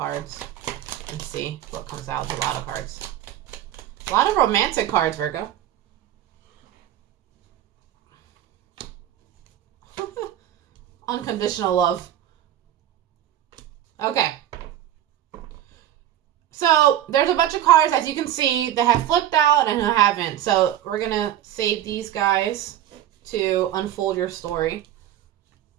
and see what comes out. There's a lot of cards. A lot of romantic cards, Virgo. Unconditional love. Okay. So there's a bunch of cards, as you can see, that have flipped out and who haven't. So we're going to save these guys to unfold your story.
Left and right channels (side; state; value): left; quieter; 11.9 dB